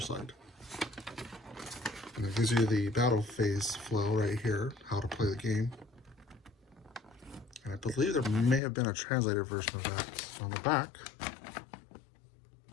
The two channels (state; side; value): drops out; right; at 8.6 s